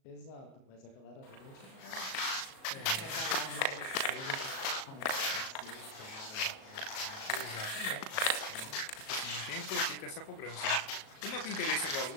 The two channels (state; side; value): late; right; 37 ms